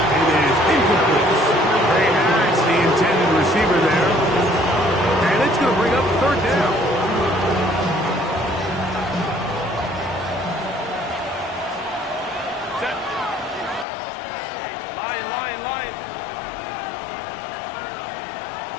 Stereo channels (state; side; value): drops out; right; at 13.9 s